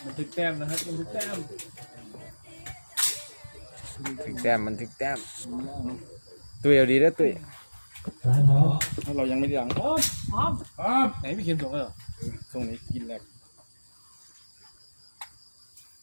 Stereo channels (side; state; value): both; inverted; correlation -1.00